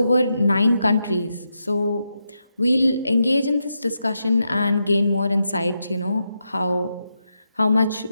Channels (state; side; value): inverted; both; correlation -0.85